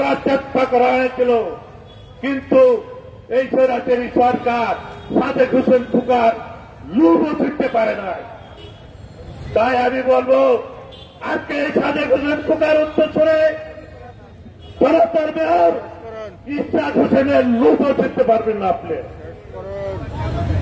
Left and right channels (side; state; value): both; identical; correlation 1.00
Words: চেষ্টা করা হয়েছিল, কিন্তু এই স্বৈরাচারী সরকার সাদেক হোসেন খোকার লুবও ছুটতে পারে না। তাই আমি বলবো আজকে এই সাদেক হোসেন খোকার উত্তরসূরি জনতার মেয়র ইশাক হোসেনের লুবও ছুটতে পারবেন না আপনি।